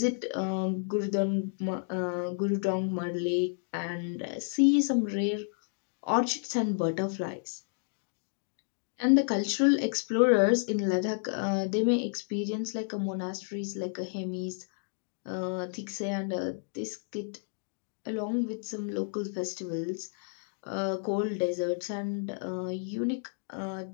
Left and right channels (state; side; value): silent; right; digital silence